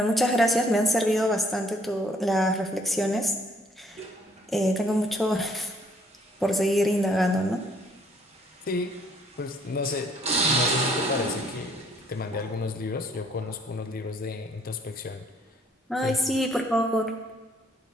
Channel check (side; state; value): both; normal; correlation 0.63